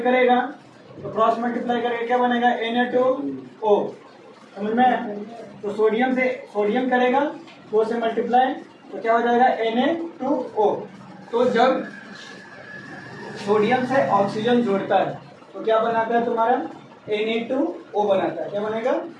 करेगा तो क्रॉस मल्टीप्लाई करके क्या बनेगा, Na2O, समझ में। तो सोडियम से सोडियम करेगा 2 से मल्टीप्लाई तो क्या हो जाएगा, Na2O। तो जब सोडियम से ऑक्सीजन जोड़ता है तो क्या बनाता है तुम्हारा Na2O बनाता है। क्या बनेगा?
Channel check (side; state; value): both; identical; correlation 1.00